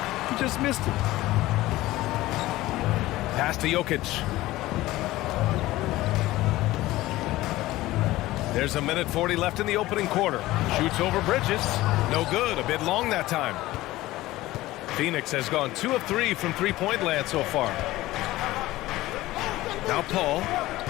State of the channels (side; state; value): right; quieter; 17.3 dB